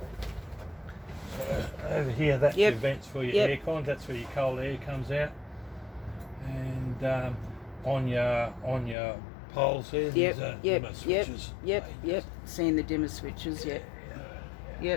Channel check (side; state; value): right; drops out; at 9.0 s